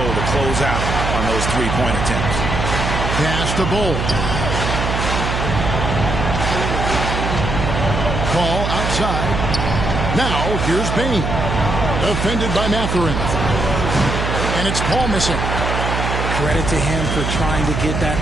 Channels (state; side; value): noise; right; hum, 2 dB below the sound